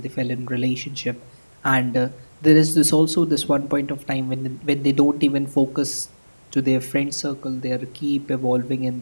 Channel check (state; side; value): inverted; both; correlation -1.00